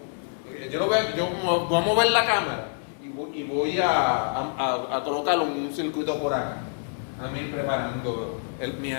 yo voy a mover la cámara y voy a colocarlo en un circuito por acá, a mí preparando mi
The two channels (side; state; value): right; silent; 61 dB below the other